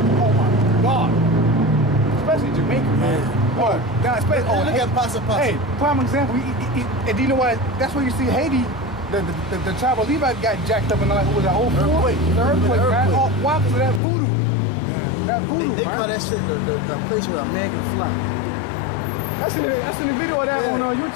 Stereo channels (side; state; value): right; drops out; at 14.0 s